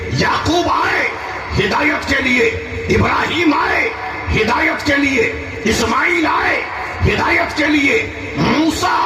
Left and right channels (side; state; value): both; identical; correlation 1.00